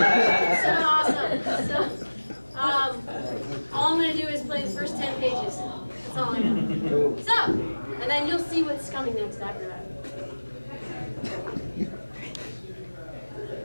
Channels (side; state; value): both; inverted; correlation -1.00